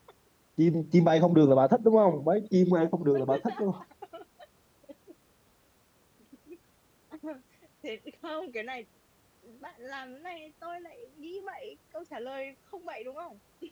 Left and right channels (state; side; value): identical; both; correlation 1.00